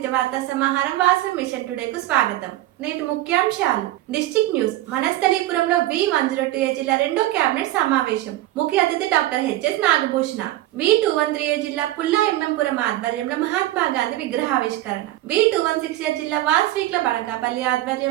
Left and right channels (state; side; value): quieter; left; 15.6 dB